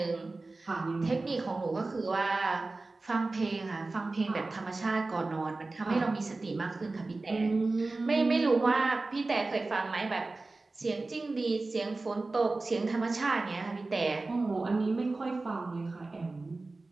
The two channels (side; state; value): left; quieter; 3.4 dB